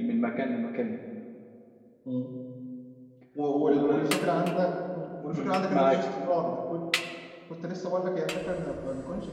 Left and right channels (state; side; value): identical; both; correlation 1.00